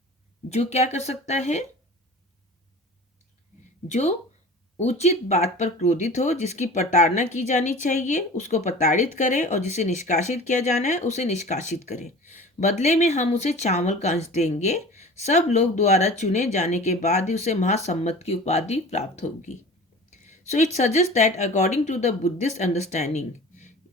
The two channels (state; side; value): normal; both; correlation 0.39